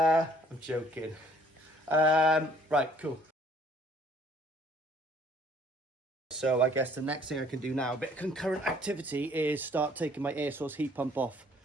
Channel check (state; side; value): normal; both; correlation 0.59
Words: joking. Right, cool. So I guess the next thing I can do now, a bit of concurrent activity, is start taking my air source heat pump off,